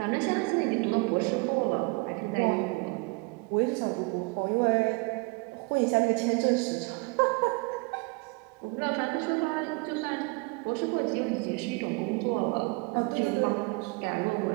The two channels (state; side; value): quieter; left; 29.0 dB